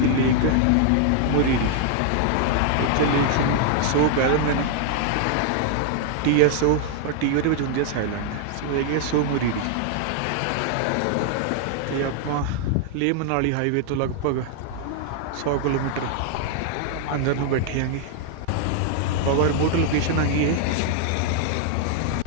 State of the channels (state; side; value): different; both; correlation 0.00